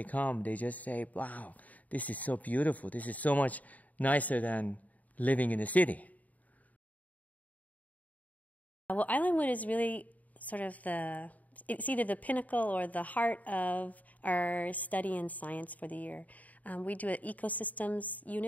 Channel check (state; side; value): late; right; 0.074 ms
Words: come, they just say, wow, this is so beautiful. This is so much nicer than living in the city. Well, Islandwood is really sort of it's either the pinnacle or the heart of our study in science for the year. We do an ecosystems